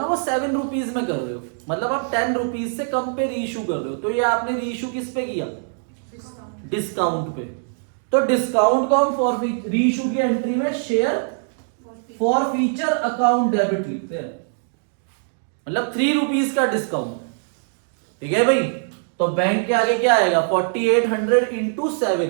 वो 7 रुपीज में कर रहे हो, मतलब आप 10 रुपीज से कम पे रीइश्यू कर रहे हो। तो ये आपने रीइश्यू किस पे किया? डिस्काउंट पे। तो डिस्काउंट को हम फॉर रीइश्यू की एंट्री में share forfeiture account debit लिखते हैं, मतलब 3 रुपीज का डिस्काउंट। ठीक है भाई। तो बैंक के आगे क्या आएगा? 4800 इंटू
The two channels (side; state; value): left; silent; digital silence